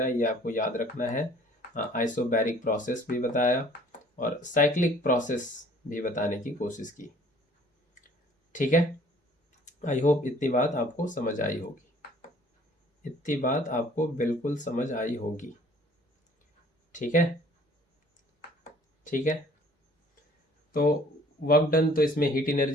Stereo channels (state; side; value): normal; both; correlation 0.55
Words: है, ये आपको याद रखना है। आइसोबैरिक प्रोसेस भी बताया और साइक्लिक प्रोसेस भी बताने की कोशिश की। ठीक है, आई होप इतनी बात आपको समझ आई होगी, इतनी बात आपको बिल्कुल समझ आई होगी। ठीक है, ठीक है, तो वर्क डन तो इसमें हीट